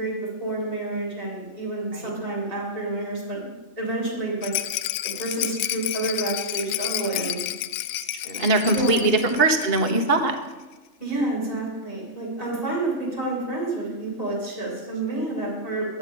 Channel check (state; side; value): late; right; 3.4 ms